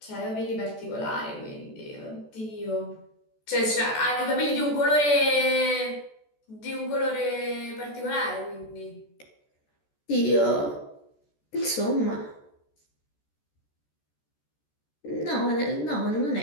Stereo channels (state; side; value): late; right; 14 ms